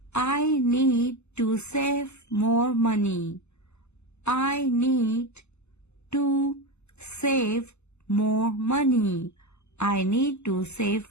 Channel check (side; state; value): right; late; 0.81 ms